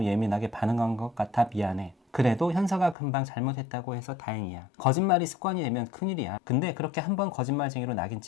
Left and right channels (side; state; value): right; drops out; at 3.0 s